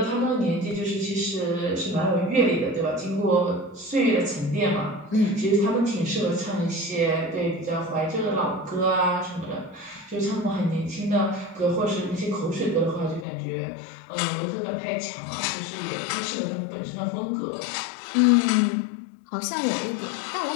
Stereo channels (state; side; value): drops out; right; at 13.2 s